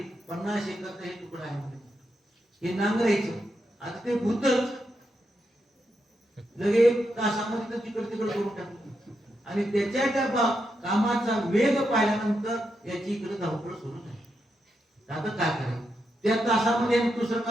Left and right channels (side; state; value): both; normal; correlation 0.84